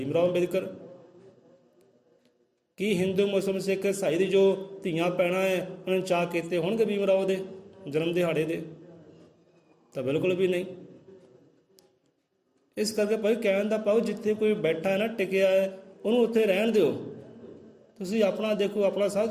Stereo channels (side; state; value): both; identical; correlation 1.00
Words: ਰਾਓ ਅੰਬੇਦਕਰ। ਕੀ ਹਿੰਦੂ ਮੁਸਲਿਮ ਸਿੱਖ ਈਸਾਈ ਦੀ ਜੋ ਧੀਆਂ ਪੈਣਾ ਹੈ ਉਹਨਾਂ ਨੇ ਚਾਅ ਕੀਤੇ ਹੋਣਗੇ ਭੀਮ ਰਾਓ ਦੇ ਜਨਮ ਦਿਹਾੜੇ ਦੇ? ਤਾਂ ਬਿਲਕੁਲ ਵੀ ਨਹੀਂ। ਇਸ ਕਰਕੇ ਭਾਈ ਕਹਿਣ ਦਾ ਪਾਓ, ਜਿੱਥੇ ਕੋਈ ਬੈਠਾ ਹੈ ਨਾ, ਟਿਕਿਆ ਹੈ, ਉਹਨੂੰ ਉੱਥੇ ਰਹਿਣ ਦਿਓ। ਤੁਸੀਂ ਆਪਣਾ ਦੇਖੋ, ਆਪਣਾ